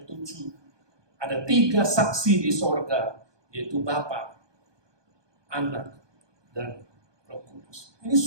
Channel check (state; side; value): late; left; 1.2 ms